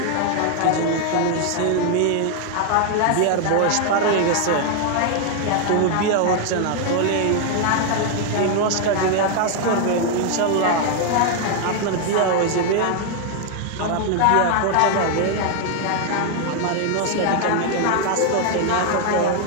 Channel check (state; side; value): different; both; correlation 0.00